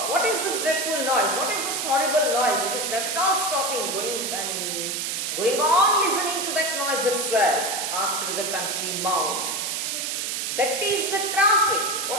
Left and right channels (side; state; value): right; noise; hiss, 2 dB below the sound